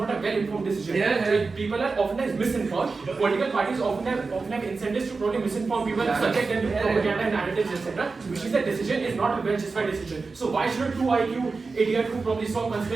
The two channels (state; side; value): quieter; left; 4.2 dB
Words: a well-informed decision. People are oftentimes misinformed. Political parties often have incentives to probably misinform people, subject them to propaganda narratives, etc. Which is that decision is not a well-justified decision. So why should a 2 IQ idiot who probably saw